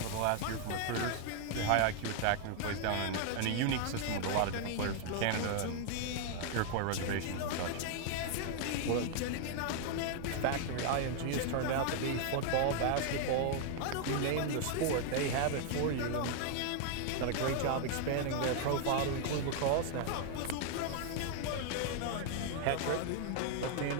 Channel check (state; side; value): different; both; correlation 0.00